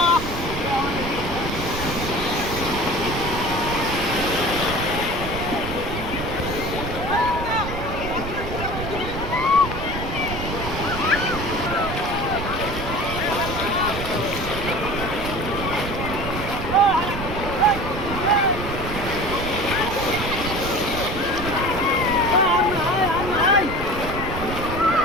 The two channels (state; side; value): noise; right; rumble, 6 dB below the sound